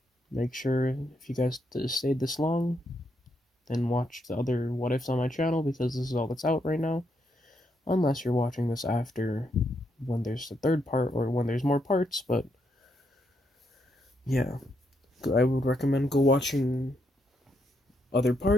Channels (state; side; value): normal; both; correlation 0.78